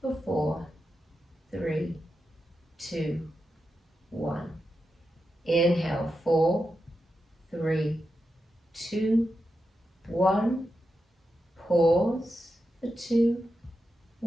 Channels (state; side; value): normal; both; correlation 0.88